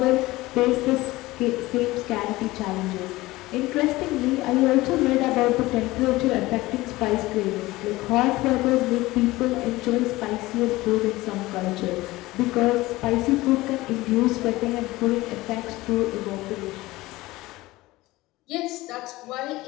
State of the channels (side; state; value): right; quieter; 19.1 dB